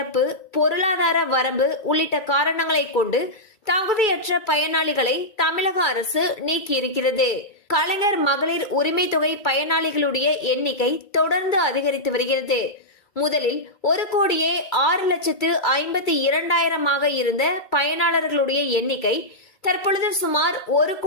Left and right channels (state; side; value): late; right; 2.3 ms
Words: பொருளாதார வரம்பு உள்ளிட்ட காரணங்களை கொண்டு தகுதியற்ற பயனாளிகளை தமிழக அரசு நீக்கியிருக்கிறது. கலைஞர் மகளிர் உரிமை தொகை பயனாளிகளுடைய எண்ணிக்கை தொடர்ந்து அதிகரித்து வருகிறது. முதலில் 1,06,52,000 இருந்த பயனாளர்களுடைய எண்ணிக்கை தற்பொழுது சுமார்